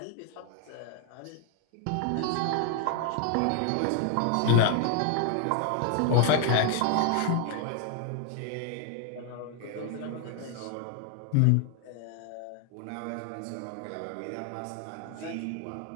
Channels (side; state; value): both; different; correlation 0.00